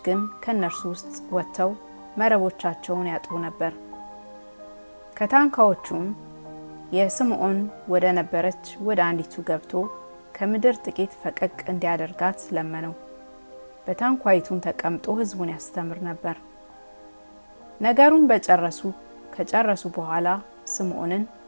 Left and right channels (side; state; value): both; inverted; correlation -1.00